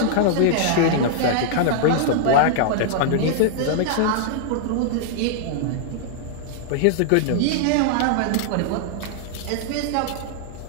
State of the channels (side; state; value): both; different; correlation -0.01